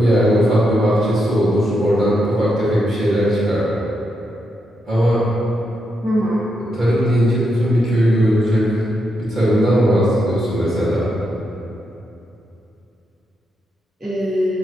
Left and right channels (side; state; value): both; normal; correlation 0.83